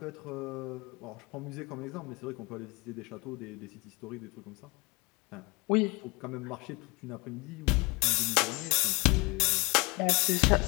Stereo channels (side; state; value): right; quieter; 26.2 dB